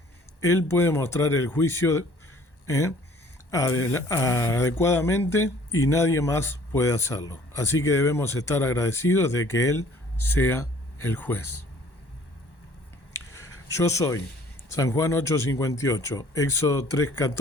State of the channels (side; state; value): right; late; 1.1 ms